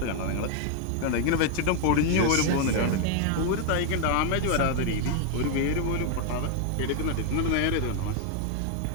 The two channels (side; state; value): both; different; correlation 0.00